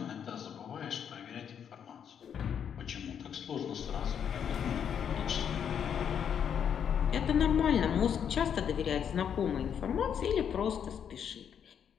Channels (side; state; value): right; quieter; 8.2 dB